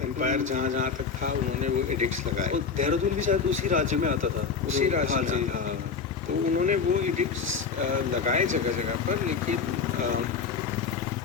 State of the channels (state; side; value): quieter; right; 5.7 dB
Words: एम्पायर जहाँ तक था उन्होंने वो एडिक्ट्स लगाए। और देहरादून भी शायद उसी राज्य में आता था, उसी राज्य में आता था। तो उन्होंने वो एडिक्ट्स लगाए जगह जगह पर, लेकिन